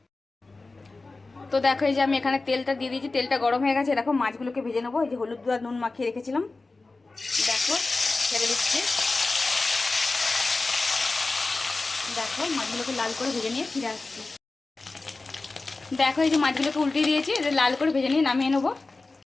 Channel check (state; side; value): quieter; right; 3.5 dB